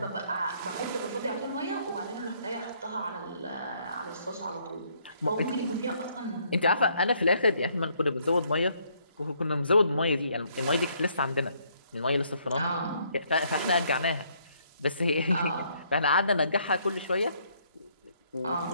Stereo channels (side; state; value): both; inverted; correlation -0.68